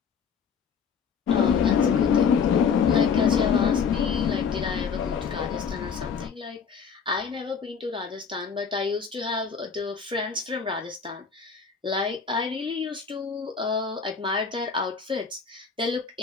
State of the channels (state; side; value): quieter; right; 6.3 dB